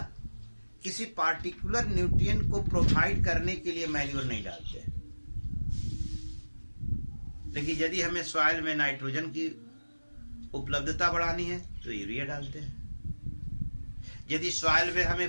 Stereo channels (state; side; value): inverted; both; correlation -1.00